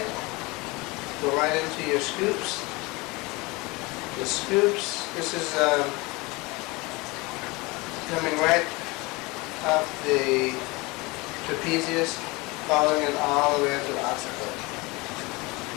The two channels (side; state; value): right; quieter; 24.5 dB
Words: Go right into your scoops. The scoops, this is coming right up the trapezius, following it all the way up to the occiput.